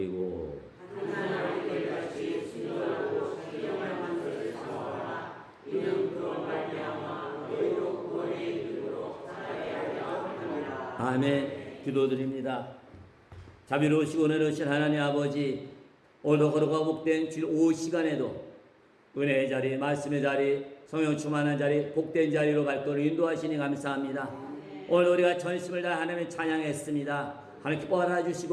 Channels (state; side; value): identical; both; correlation 1.00